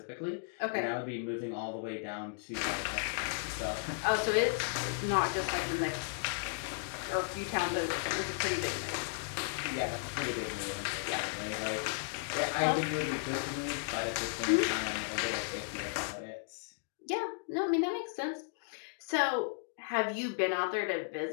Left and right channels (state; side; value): silent; right; digital silence